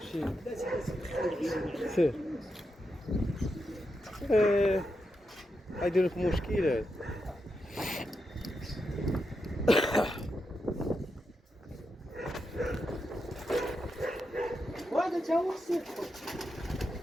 سير غيدير لك مشكل هذا وهذا تا هو خصو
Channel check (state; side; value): normal; both; correlation 0.86